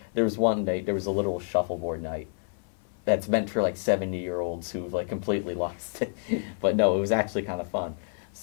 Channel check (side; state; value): right; silent; 55 dB below the other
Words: there was one night, there was a literal shuffleboard night that's meant for like 70-year-olds who've like completely lost it. But no, it was actually kind of fun.